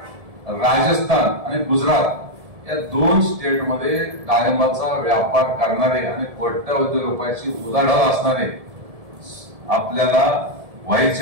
राजस्थान आणि गुजरात या 2 स्टेटमध्ये डाळिंबाचा व्यापार करणारे आणि कोट्यावधी रुपयाची उलाढाल असणारे आपल्याला व्हाईस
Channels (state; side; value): late; left; 1.7 ms